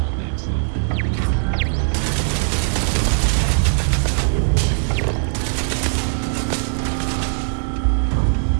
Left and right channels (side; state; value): left; silent; 66 dB below the other